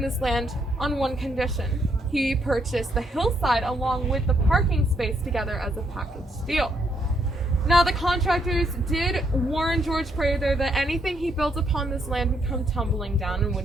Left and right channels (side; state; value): both; normal; correlation 0.74